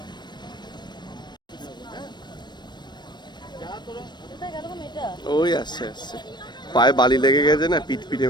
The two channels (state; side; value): late; right; 0.21 ms